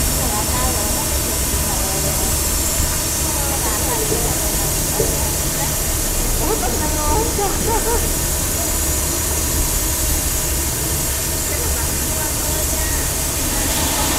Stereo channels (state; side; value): identical; both; correlation 1.00